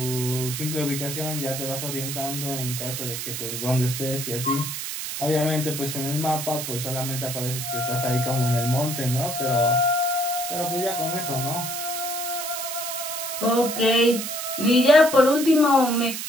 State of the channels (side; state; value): right; noise; hiss, 5 dB below the sound